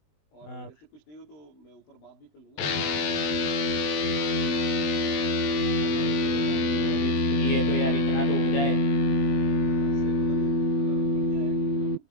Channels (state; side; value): late; right; 20 ms